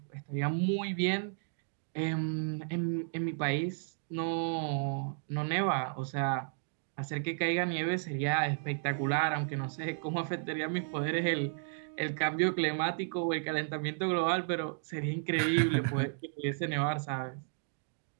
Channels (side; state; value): left; silent; digital silence